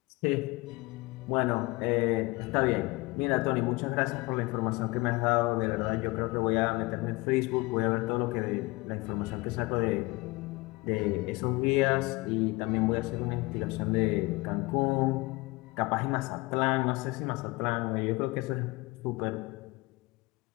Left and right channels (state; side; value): quieter; right; 23.4 dB